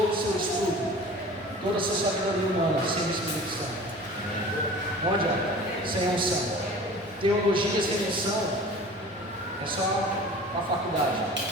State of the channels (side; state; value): both; normal; correlation 0.41